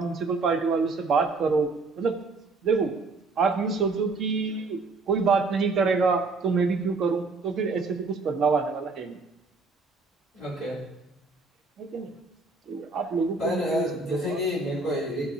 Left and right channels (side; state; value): left; quieter; 3.8 dB